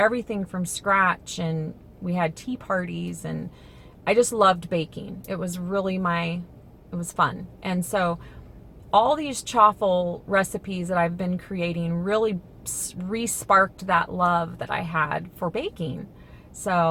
from scratch, and we had tea parties, and I just loved baking. It was really it was fun. And so all these chaffle recipes that I've been creating really re-sparked that love that I had for baking.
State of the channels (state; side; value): identical; both; correlation 1.00